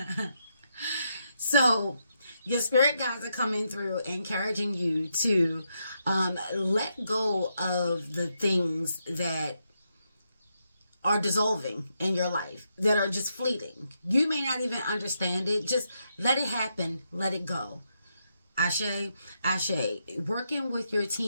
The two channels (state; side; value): inverted; both; correlation -0.81